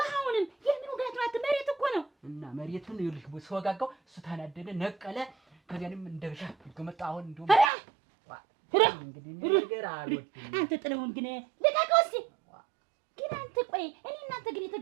የምን ውጋት ነው መሬት እኮ ነው እና መሬቱን ይልሽ ሰወጋጋው እሱ ታናደደ ነቀለ ከዚያንም እንደብሻ ከመጣ አሁን እንደው እንግዲህ ነገር አልወድም አንተ ጥለውን ግን ልቀቀው እስኪ ግን አንተ ቆይ እኔ እናንተ ግን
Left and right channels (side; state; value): left; drops out; at 7.7 s